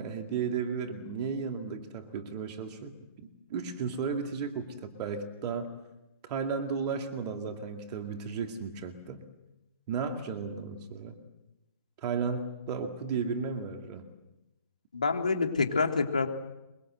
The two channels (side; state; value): both; inverted; correlation -0.47